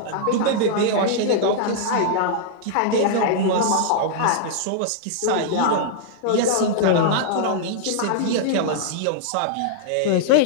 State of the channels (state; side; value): different; both; correlation -0.01